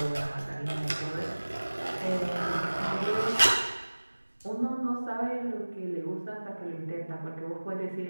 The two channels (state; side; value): inverted; both; correlation -1.00